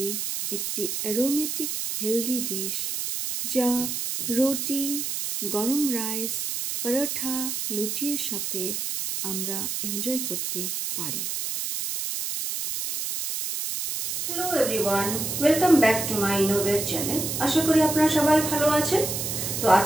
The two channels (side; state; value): right; noise; hiss, 3 dB below the sound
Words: একটি অ্যারোমেটিক হেলদি ডিশ যা রুটি, গরম রাইস, পরোটা, লুচির সাথে আমরা এনজয় করতে পারি। Hello everyone, welcome back to my ইনোভের চ্যানেল। আশা করি আপনারা সবাই ভালো আছেন। তো